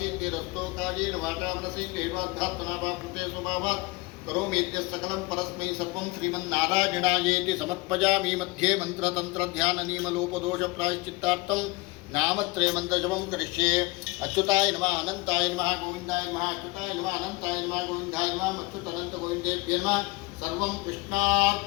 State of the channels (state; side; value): quieter; right; 23.8 dB